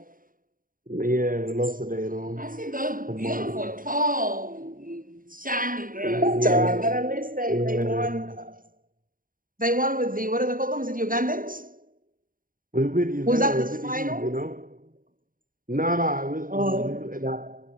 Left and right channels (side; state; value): left; late; 0.40 ms